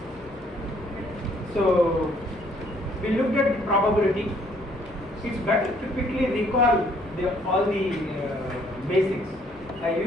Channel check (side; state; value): left; noise; hum, 25 dB below the sound